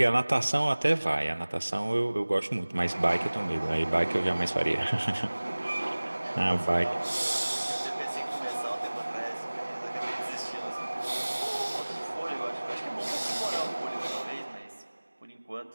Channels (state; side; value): inverted; both; correlation -1.00